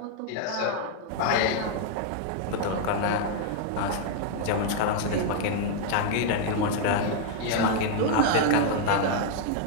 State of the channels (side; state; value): both; different; correlation 0.00